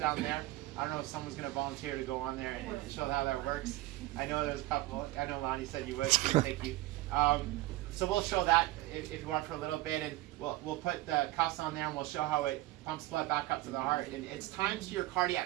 there. I don't know if someone's going to volunteer to go on there and show how that works. I know there's a couple. I know Lonnie said you would. Thank you. So we'll show that if you want for a little bit, and we'll put the cuffs on there, and we'll show how it pumps blood back up to the heart. And it's times your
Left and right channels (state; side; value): quieter; left; 18.2 dB